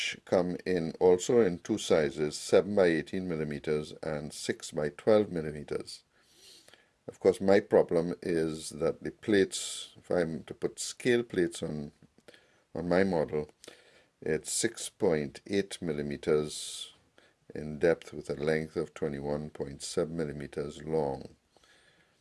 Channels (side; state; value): both; identical; correlation 1.00